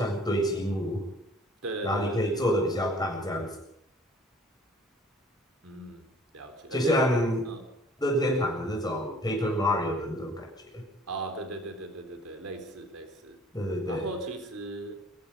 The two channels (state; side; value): normal; both; correlation 0.53